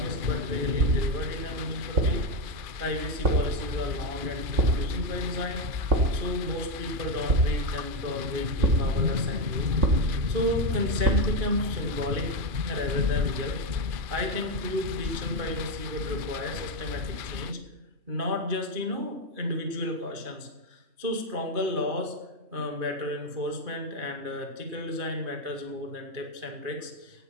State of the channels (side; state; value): left; late; 2.5 ms